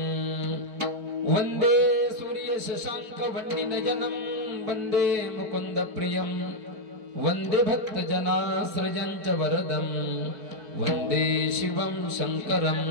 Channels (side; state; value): left; late; 4.6 ms